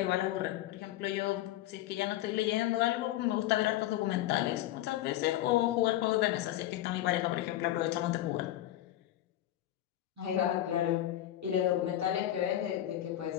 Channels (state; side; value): quieter; right; 13.8 dB